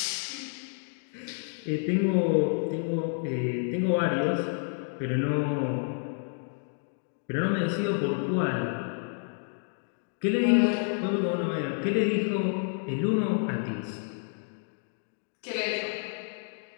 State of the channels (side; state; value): right; silent; 57 dB below the other